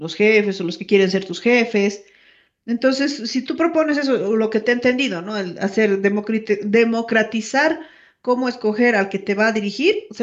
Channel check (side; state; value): both; identical; correlation 1.00